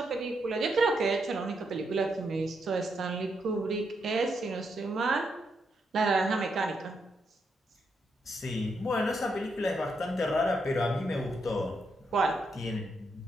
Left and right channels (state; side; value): normal; both; correlation 0.80